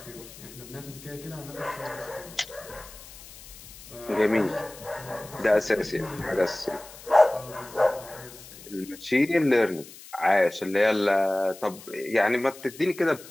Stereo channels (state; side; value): noise; left; hiss, 18 dB below the sound